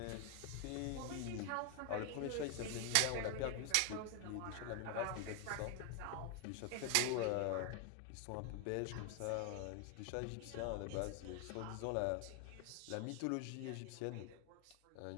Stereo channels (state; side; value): different; both; correlation 0.01